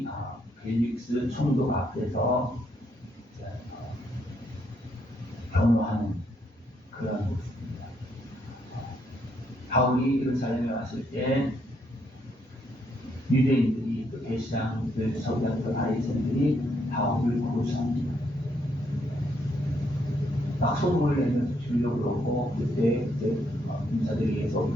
벨릭스 총독 앞에서 변호하는 그런 모습입니다. 바울이 예루살렘에 왔을 때 유대인들이 또 대시장들, 서기관들, 바리새인들이 바울을 고소합니다. 막 소문을 내면서 주려고 그러고 그때 인사들에 의해서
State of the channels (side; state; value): both; normal; correlation 0.74